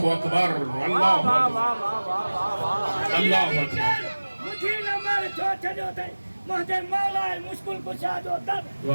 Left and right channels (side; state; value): both; inverted; correlation -1.00